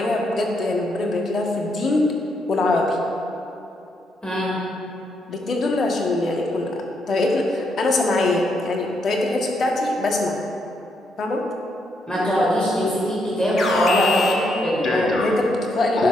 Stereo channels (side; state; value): both; normal; correlation 0.77